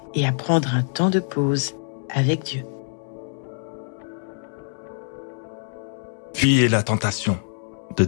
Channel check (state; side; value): silent; right; 62 dB below the other